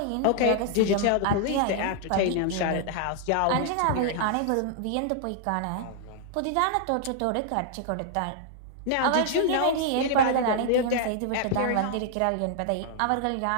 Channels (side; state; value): both; different; correlation -0.01